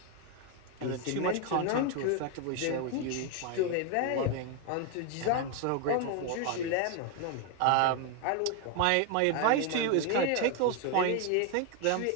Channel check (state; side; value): different; both; correlation 0.01